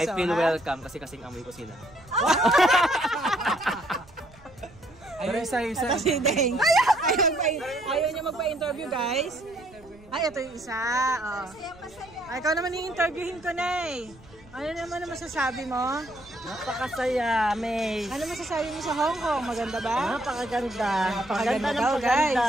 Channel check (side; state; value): right; noise; rumble, 25 dB below the sound